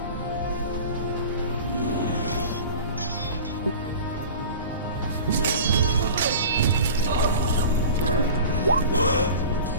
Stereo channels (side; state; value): both; inverted; correlation -0.38